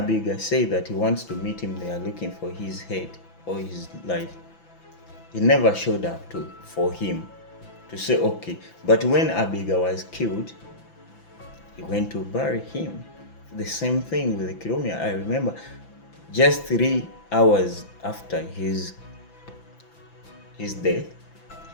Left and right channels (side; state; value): right; late; 5.9 ms